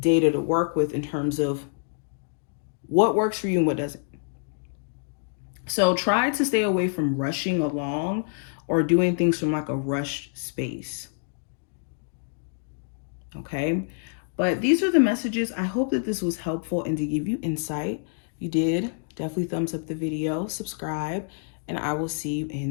to work with in terms of what works for you and what doesn't. So try to stay away from rushing along or doing things from like a rushed space. Okay, but these are the messages. I hope that this was helpful and to give you insight. If you did, definitely thumbs up the video, subscribe, and I will see you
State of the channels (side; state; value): right; silent; digital silence